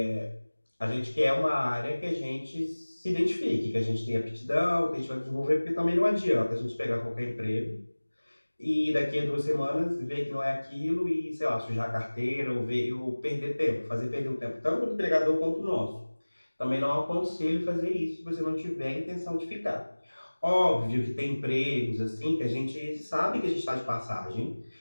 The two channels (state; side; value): inverted; both; correlation -1.00